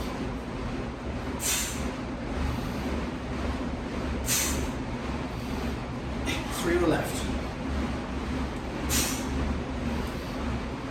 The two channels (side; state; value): both; identical; correlation 1.00